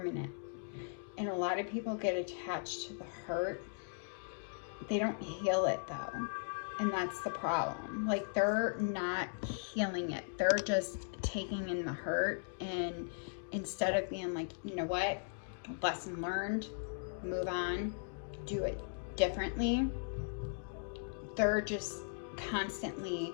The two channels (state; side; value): silent; right; digital silence